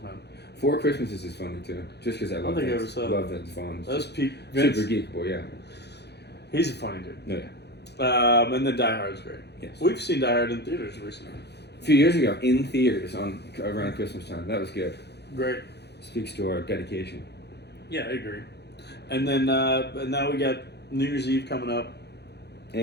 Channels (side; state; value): right; late; 0.49 ms